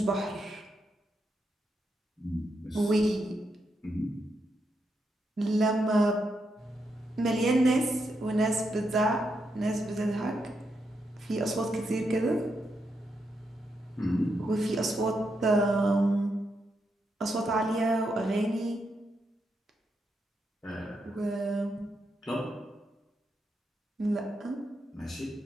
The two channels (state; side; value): normal; both; correlation 0.82